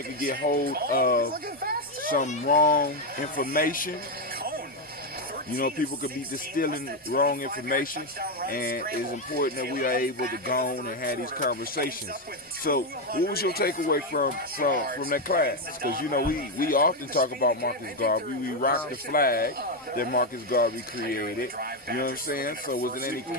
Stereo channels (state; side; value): normal; both; correlation 0.05